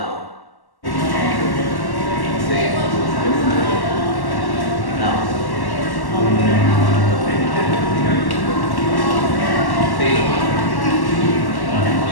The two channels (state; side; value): late; right; 1.1 ms